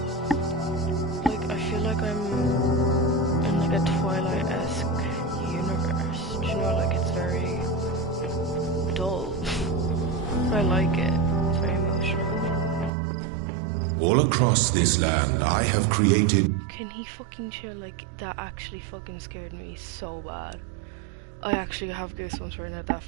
I feel like I'm in like a Twilight-esque universe. Do you know, like it's very dull. But I like it. It's very emotional. All across this land, I have created... Can he fucking chill? Like, that actually fucking scared me so bad. I actually have goosebumps right now. That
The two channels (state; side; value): drops out; left; at 12.9 s